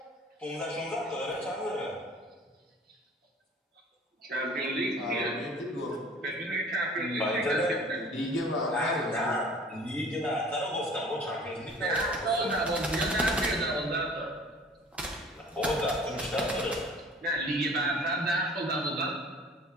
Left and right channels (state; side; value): normal; both; correlation 0.48